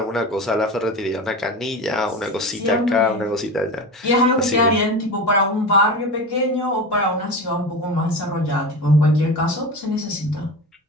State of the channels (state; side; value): normal; both; correlation 0.27